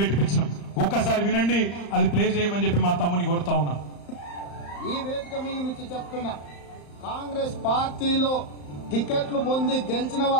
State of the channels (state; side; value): late; right; 35 ms